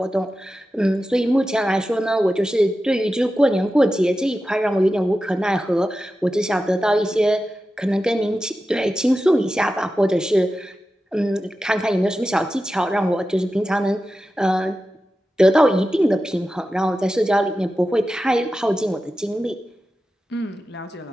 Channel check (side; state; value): both; normal; correlation 0.92